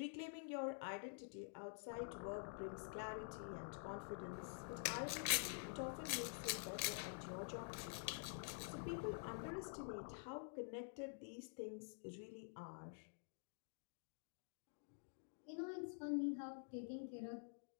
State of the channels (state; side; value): silent; right; digital silence